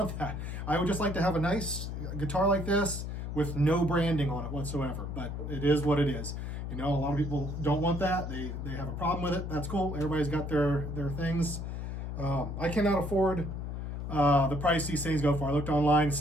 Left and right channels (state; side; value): noise; left; hum, 5 dB below the sound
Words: that. I would just like to have a nice guitar like this with no branding on it whatsoever. But it is what it is. You know, a lot of people don't want that. They have a problem with it. That's cool. Everybody's got their things. I cannot afford the price these things go for. I looked online,